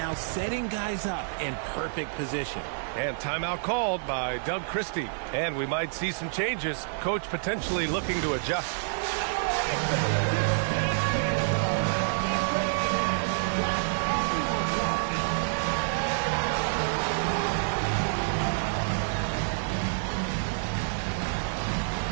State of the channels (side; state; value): left; silent; digital silence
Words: setting guys up in perfect position. And timeout called by Doug Christie. And we might see some changes. Coach potentially looking to adjust.